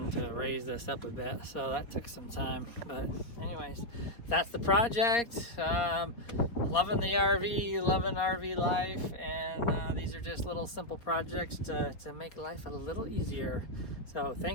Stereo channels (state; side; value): late; right; 4.4 ms